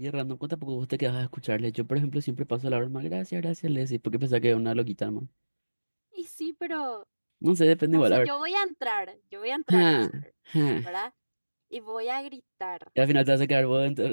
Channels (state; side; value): inverted; both; correlation -1.00